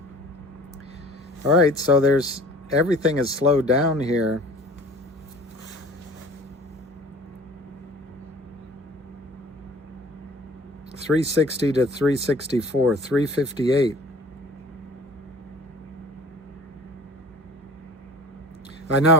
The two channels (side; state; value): both; normal; correlation 0.46